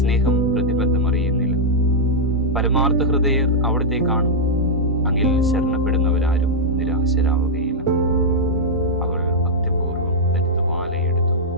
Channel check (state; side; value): normal; both; correlation -0.06